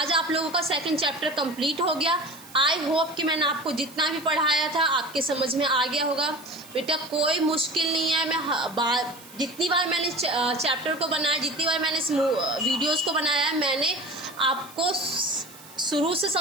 आप लोगों का 2nd चैप्टर कंप्लीट हो गया। आई होप कि मैंने आपको जितना भी पढ़ाया था आपके समझ में आ गया होगा। बेटा कोई मुश्किल नहीं है। मैं जितनी बार मैंने चैप्टर को बनाया, जितनी बार मैंने इस वीडियोस को बनाया है, मैंने आपको शुरू से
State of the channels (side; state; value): right; noise; hiss, 20 dB below the sound